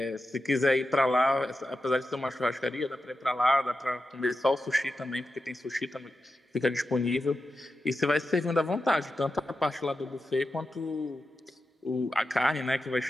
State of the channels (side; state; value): both; normal; correlation 0.90